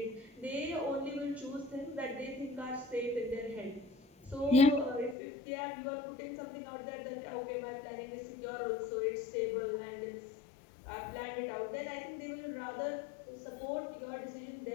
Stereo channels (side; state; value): right; drops out; at 5.2 s